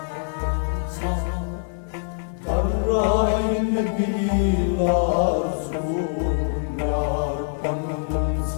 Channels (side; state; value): right; silent; 63 dB below the other